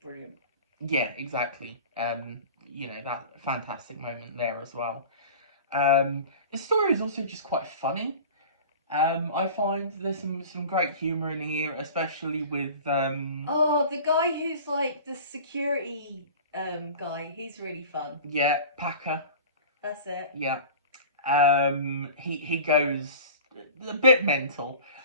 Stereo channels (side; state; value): both; inverted; correlation -0.39